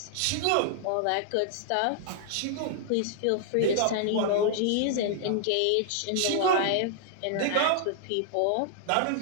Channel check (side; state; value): both; different; correlation -0.01